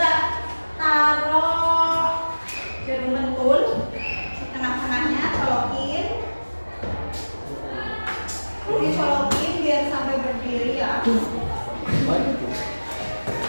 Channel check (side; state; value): both; inverted; correlation -1.00